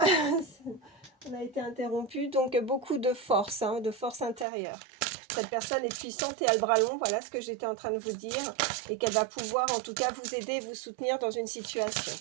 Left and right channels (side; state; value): left; drops out; at 4.5 s